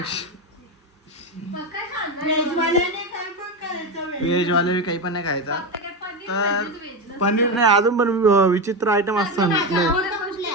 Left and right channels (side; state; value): both; normal; correlation 0.15